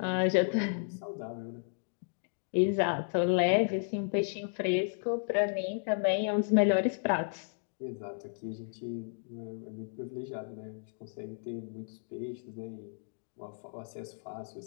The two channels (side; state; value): right; silent; digital silence